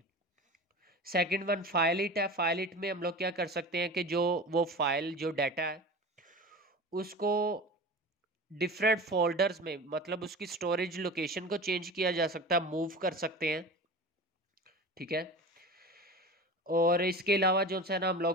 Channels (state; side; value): normal; both; correlation 0.33